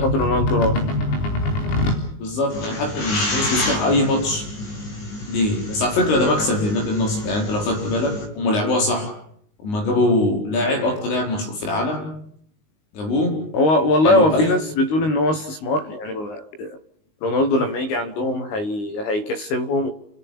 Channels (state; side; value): late; right; 19 ms